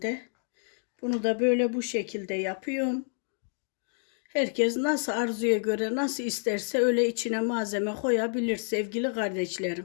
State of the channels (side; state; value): right; silent; digital silence